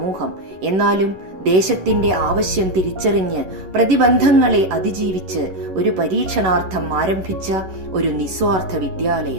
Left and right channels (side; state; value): left; late; 11 ms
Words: എന്നാലും ദേശത്തിന്റെ ആവശ്യം തിരിച്ചറിഞ്ഞ് പ്രതിബന്ധങ്ങളെ അതിജീവിച്ച് ഒരു പരീക്ഷണാർത്ഥം ആരംഭിച്ച ഒരു നിസ്വാർത്ഥ